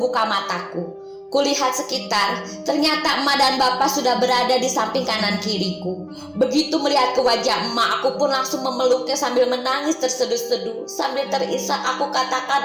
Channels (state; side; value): identical; both; correlation 1.00